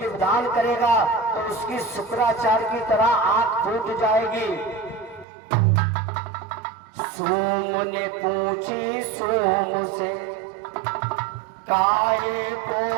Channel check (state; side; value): drops out; left; at 5.2 s